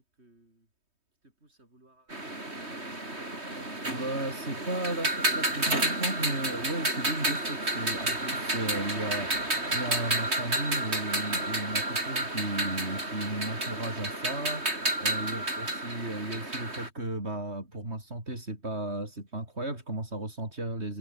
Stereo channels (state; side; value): late; left; 3.2 ms